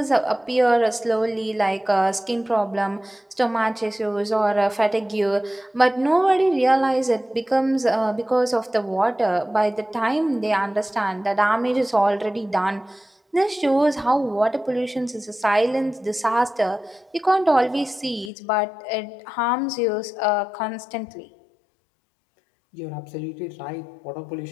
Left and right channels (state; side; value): drops out; right; at 18.3 s